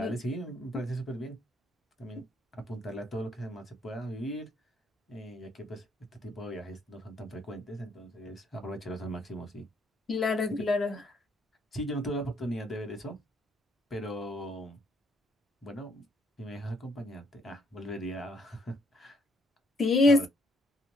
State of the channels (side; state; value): both; normal; correlation 0.69